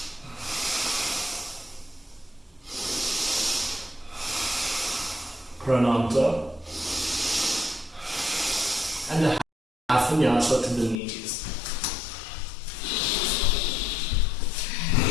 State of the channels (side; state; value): right; drops out; at 11.0 s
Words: Prananta. And a half vinyasa to the knees.